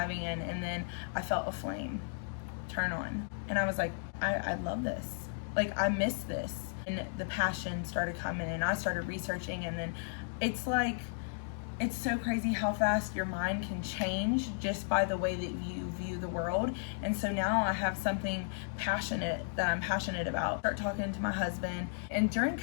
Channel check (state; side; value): silent; right; digital silence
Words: in, and then I felt a flame turn on, and I was like, I love this. Like, I miss this. And the passion started coming, and I started researching, and then it's so crazy how fast your mind can change just by the way that you view the world. And so now I have something passionate that I'm passionate about. Start talking to my husband. And during